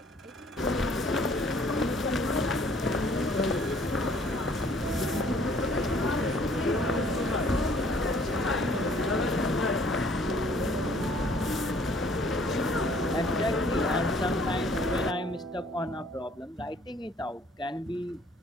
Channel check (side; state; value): both; normal; correlation 0.58